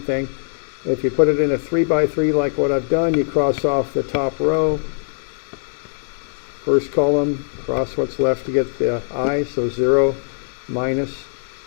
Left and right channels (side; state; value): right; silent; digital silence